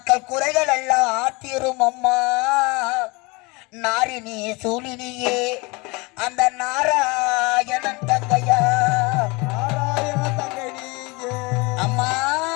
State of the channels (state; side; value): quieter; right; 26.3 dB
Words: குறைகள் எல்லாம் தீரும் அம்மா. நாரினி சூழினியே அந்த நாராயணன் தங்கையா அம்மா.